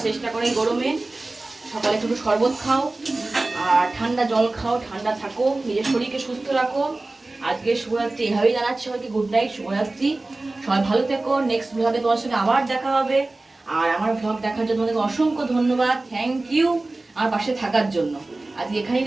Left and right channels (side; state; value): left; quieter; 3.0 dB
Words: চেষ্টা করে এই গরমে। সকালে একটু শরবত খাও আর ঠান্ডা জল খাও, ঠান্ডা থাকো, নিজের শরীরকে সুস্থ রাখো। আজকে শুভরাত্রি এভাবেই জানাচ্ছি সবাইকে, গুড নাইট, শুভরাত্রি। সবাই ভালো থেকো, নেক্সট ব্লগে তোমার সঙ্গে আবার দেখা হবে। আর আমার ব্লগ দেখার জন্য তোমাদেরকে অসংখ্য ধন্যবাদ, থ্যাংক ইউ আমার পাশে থাকার জন্য। আজকে এখানেই